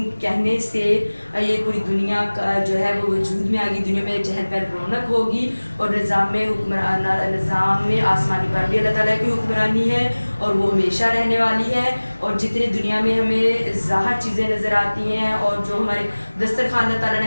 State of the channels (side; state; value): both; inverted; correlation -1.00